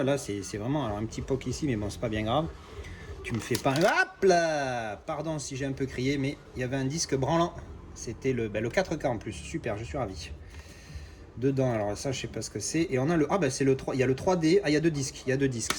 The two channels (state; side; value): identical; both; correlation 1.00